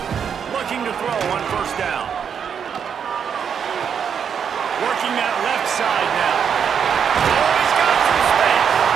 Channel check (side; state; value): left; quieter; 7.4 dB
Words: Looking to throw on first down. Working that left side now. Oh, he's got some space.